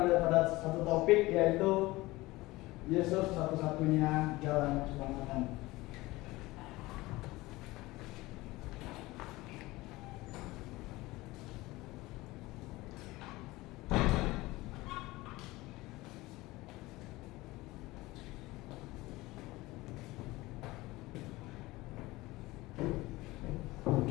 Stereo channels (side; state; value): right; quieter; 20.0 dB